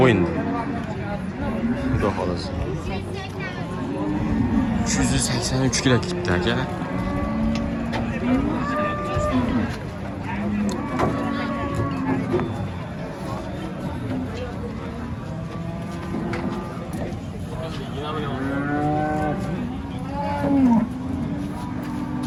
bo'yinda. Xudo xolasa. 383 kilo ketdi akalar.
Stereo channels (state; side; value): identical; both; correlation 1.00